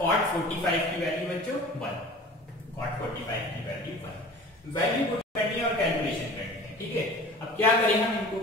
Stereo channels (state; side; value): normal; both; correlation 0.42